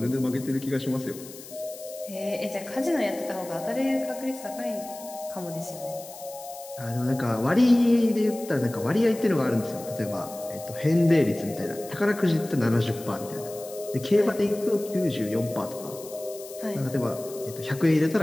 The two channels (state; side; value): noise; left; hiss, 16 dB below the sound